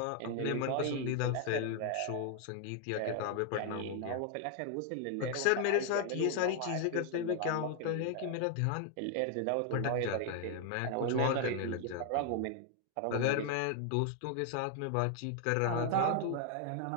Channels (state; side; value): different; both; correlation 0.00